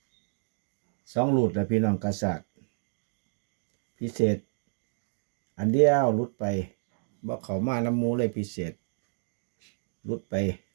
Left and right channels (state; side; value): silent; left; digital silence